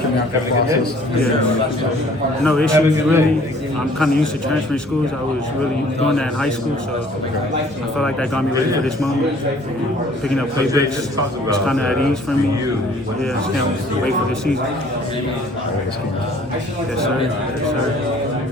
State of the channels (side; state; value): both; normal; correlation 0.55